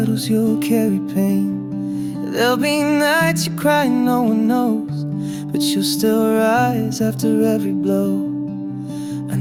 you'll carry pain. There'll be nights you cry, no one knows, but you'll still rise after every blow. I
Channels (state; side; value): identical; both; correlation 1.00